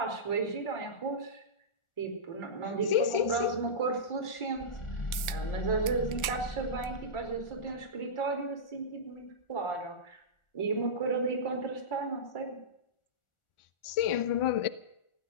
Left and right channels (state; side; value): late; right; 1.4 ms